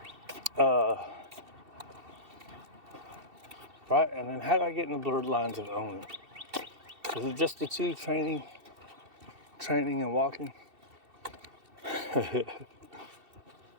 Right, and then how do I get in the blurred lines of owning? Is it just the two, training and walking?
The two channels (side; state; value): left; late; 2.7 ms